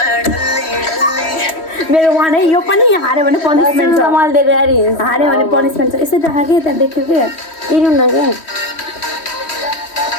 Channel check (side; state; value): right; late; 3.1 ms